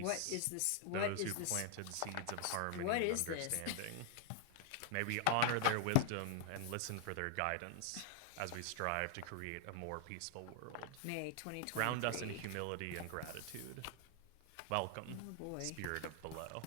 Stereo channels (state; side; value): different; both; correlation 0.00